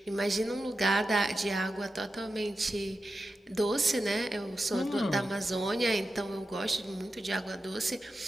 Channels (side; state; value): both; normal; correlation 0.91